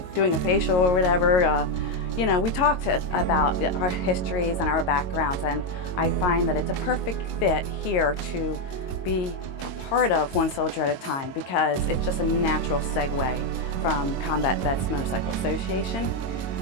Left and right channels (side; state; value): right; late; 22 ms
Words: doing a facial or whatever, we talked about our histories and our backgrounds, and I find that it's a perfect fit here to be a part of One Soldier at a Time because it's just a natural segue from Combat Vets Motorcycle Association.